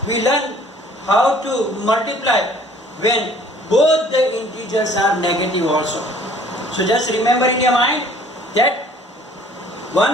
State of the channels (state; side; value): normal; both; correlation 0.55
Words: we learn how to multiply when both the integers are negative also. So just remember in your mind that